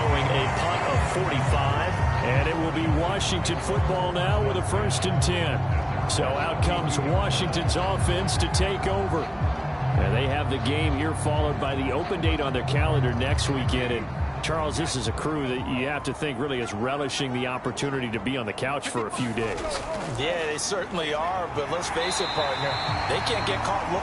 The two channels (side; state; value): both; identical; correlation 1.00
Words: a punt of 45. And it will be Washington football now with a 1st and 10. So out comes Washington's offense to take over. And they have the game here followed by the open date on their calendar next weekend. And Charles, this is a crew that you have to think really is relishing the opportunity to be on the couch for a few days. Yeah, they certainly are, but let's face it, partner, they can't get caught